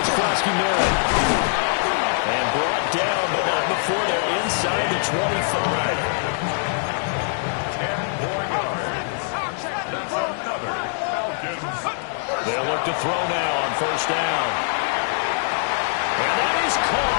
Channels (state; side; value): silent; right; 63 dB below the other